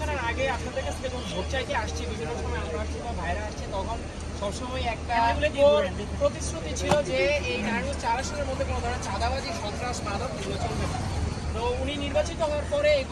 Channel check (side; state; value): both; identical; correlation 1.00